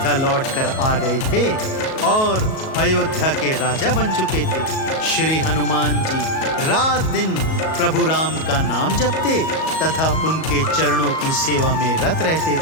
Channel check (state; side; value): late; right; 37 ms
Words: लौटकर आ गए थे और अयोध्या के राजा बन चुके थे। श्री हनुमान जी रात दिन प्रभु राम का नाम जपते तथा उनके चरणों की सेवा में रत रहते